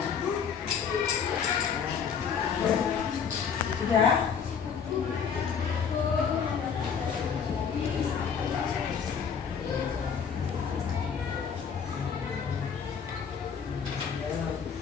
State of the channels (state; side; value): quieter; right; 6.8 dB